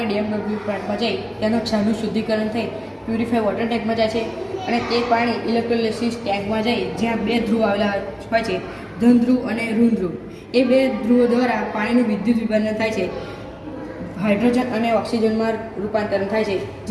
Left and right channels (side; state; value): both; identical; correlation 1.00